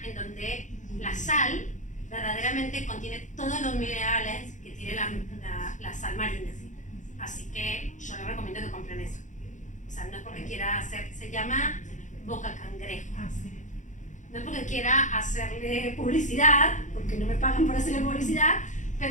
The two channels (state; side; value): late; right; 0.36 ms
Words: en donde la sal verdaderamente contiene todos los minerales que tiene la sal marina. Así que yo les recomiendo que compren eso. O sea, no es porque quiera hacer, se llama boca cangrejo. No es porque quiera hacerle publicidad, porque no me pagan por hacerle publicidad,